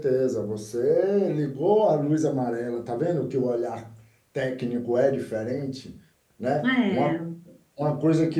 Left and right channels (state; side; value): identical; both; correlation 1.00